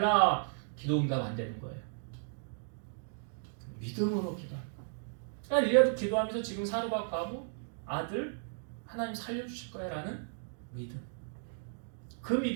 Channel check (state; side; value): silent; left; digital silence